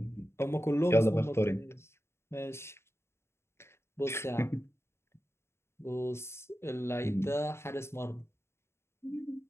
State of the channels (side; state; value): right; late; 0.12 ms